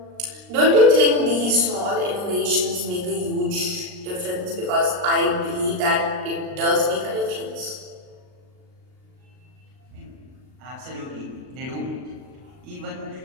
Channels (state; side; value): late; left; 39 ms